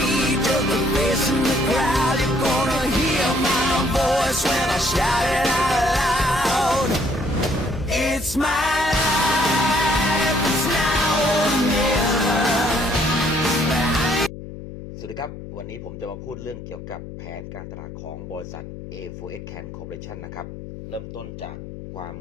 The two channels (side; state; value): left; noise; hum, 12 dB below the sound